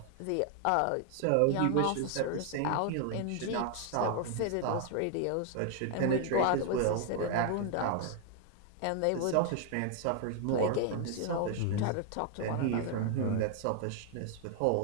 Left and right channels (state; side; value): different; both; correlation 0.00